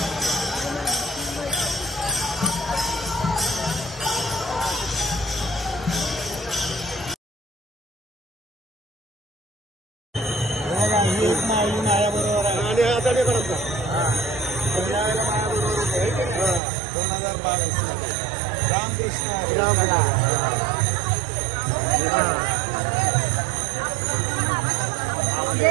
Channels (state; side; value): drops out; left; at 16.6 s